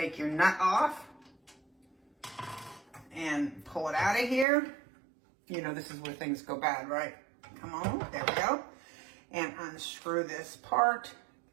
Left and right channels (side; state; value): left; drops out; at 4.5 s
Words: your nut off and pull it out of here. You know, this is where things go bad, right? Come on, there we go. And unscrew this part.